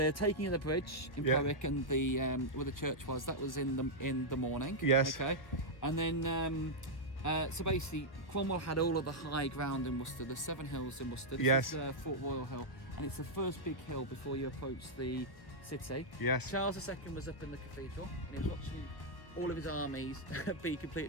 taking of the bridge in Powick and the where the church was, that was in the morning. Yes. Okay. And then so basically Cromwell had all of the high ground in Worcester, the 7 hills in Worcester. This is Fort Royal Hill, and it's the first big hill before you approach the city. Yes. Charles II was up in the cathedral, and he was watching all of his armies be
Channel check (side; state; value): right; late; 1.2 ms